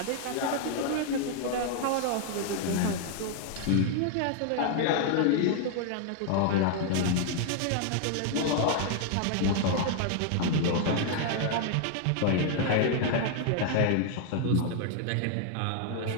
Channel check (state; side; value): different; both; correlation 0.00